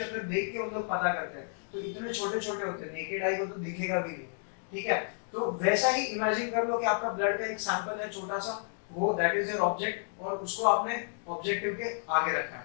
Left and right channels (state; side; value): silent; right; digital silence